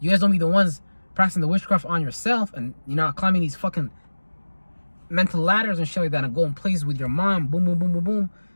You guys don't be the ones practicing the witchcraft on yourself, and you're not climbing these fucking mental ladders and shit like that and going places with your mind, boom, boom, boom, boom, boom,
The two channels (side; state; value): both; inverted; correlation -1.00